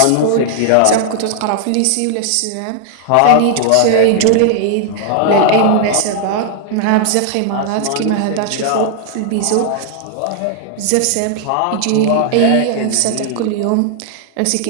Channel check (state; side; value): different; both; correlation 0.00